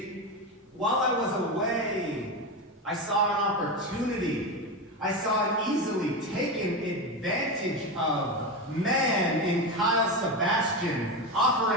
while I was away, I saw an opportunity. I saw an easily taken advantage of man in Kyle Sebastian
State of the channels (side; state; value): both; normal; correlation 0.17